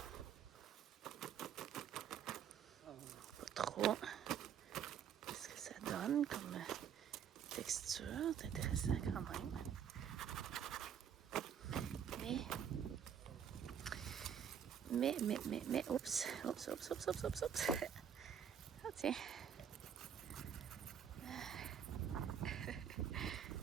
Pas trop. Qu'est-ce que ça donne comme texture? C'est intéressant quand même. Mais, oups. Ah, tiens.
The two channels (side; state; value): left; quieter; 8.4 dB